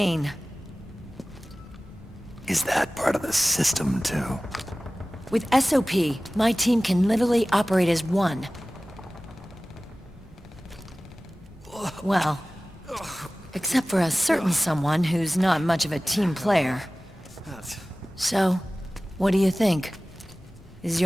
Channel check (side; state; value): both; normal; correlation 0.97